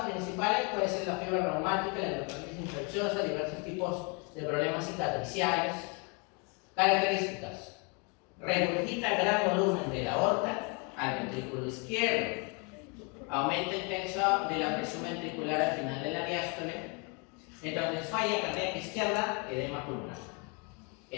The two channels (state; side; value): quieter; right; 33.6 dB